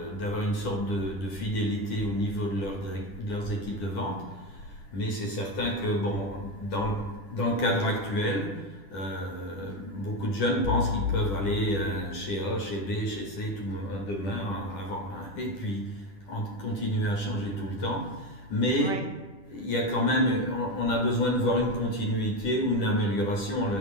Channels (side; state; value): right; late; 10 ms